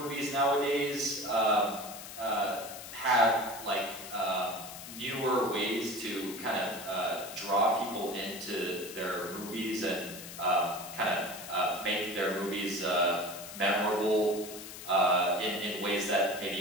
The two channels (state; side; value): noise; left; hiss, 12 dB below the sound